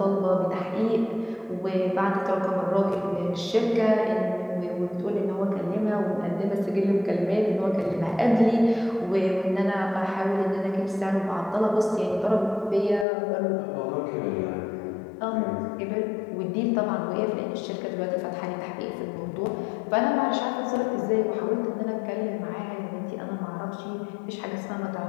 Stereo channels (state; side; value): drops out; right; at 13.1 s